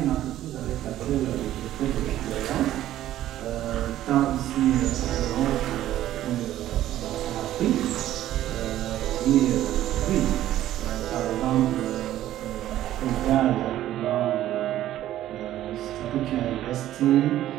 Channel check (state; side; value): quieter; left; 13.2 dB